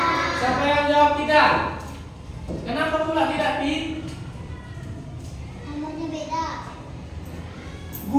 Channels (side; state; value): both; identical; correlation 1.00